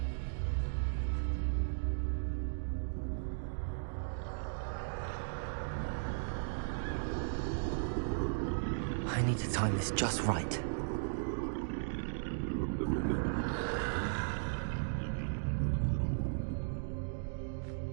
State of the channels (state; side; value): silent; left; digital silence